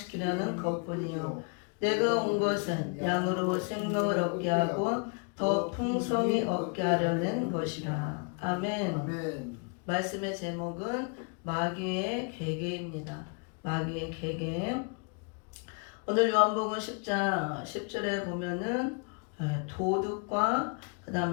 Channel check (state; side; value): quieter; right; 36.8 dB